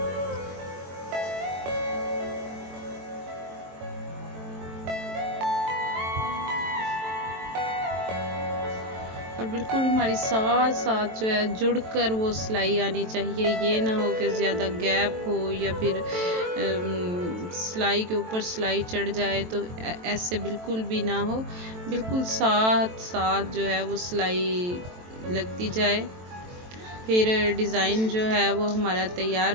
और बिल्कुल हमारी साथ साथ जो है जुड़कर वो सिलाई आनी चाहिए। ये ना हो कि ज़्यादा गैप हो या फिर सिलाई के ऊपर सिलाई चढ़ जाए, तो ऐसे बिल्कुल भी ना हो। बिल्कुल साथ साथ जो है वो सिलाई लगती जाए, फिर डिज़ाइन जो है वो हमारा तैयार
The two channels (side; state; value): left; late; 23 ms